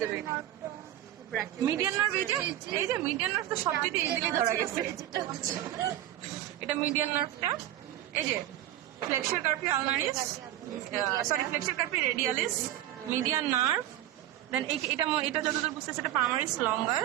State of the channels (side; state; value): left; quieter; 13.4 dB